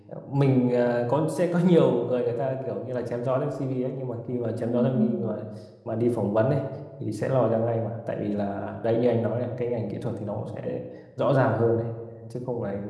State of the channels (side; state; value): both; identical; correlation 1.00